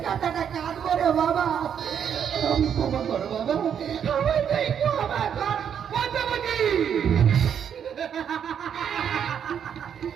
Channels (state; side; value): quieter; left; 8.3 dB